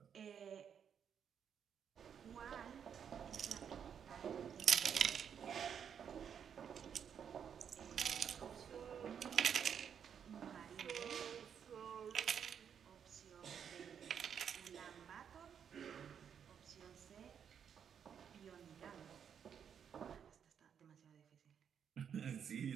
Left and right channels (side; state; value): left; quieter; 7.9 dB